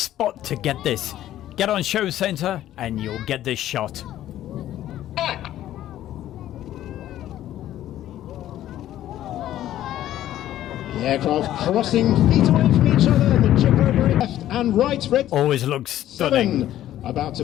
to get this. Get on Show Centre and you'll get this shot. The aircraft crossing feet away from each other. The chip over left and right. Red always looks stunning. 7 about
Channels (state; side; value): quieter; right; 12.8 dB